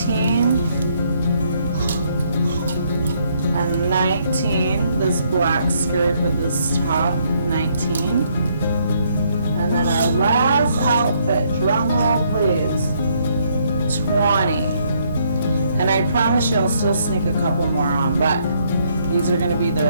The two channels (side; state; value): both; inverted; correlation -0.70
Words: and 19. This black skirt with this top, 19. And then our last outfit, drum roll please, 20. And I promise you I'll still sneak a couple more on, but these are going to be